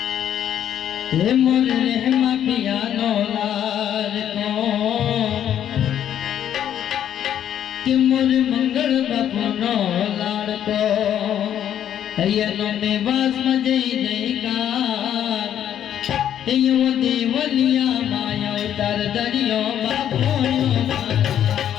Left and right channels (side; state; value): right; quieter; 10.2 dB